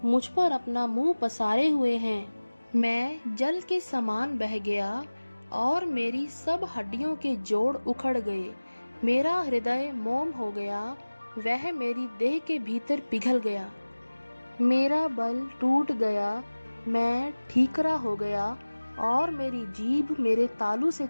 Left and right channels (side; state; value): both; inverted; correlation -1.00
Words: मुझ पर अपना मुंह पसारे हुए हैं। मैं जल के समान बह गया और मेरी सब हड्डियों के जोड़ उखड़ गए। मेरा हृदय मोम हो गया, वह मेरी देह के भीतर पिघल गया। मेरा बल टूट गया, मैं ठीकरा हो गया और मेरी जीभ मेरे तालू से